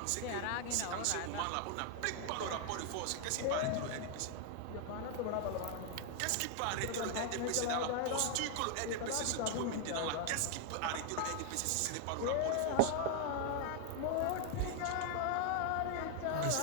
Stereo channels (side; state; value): both; different; correlation 0.00